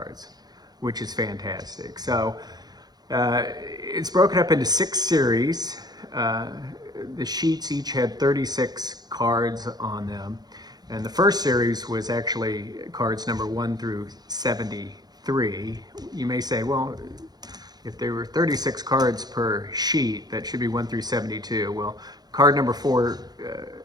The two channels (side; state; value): left; late; 0.19 ms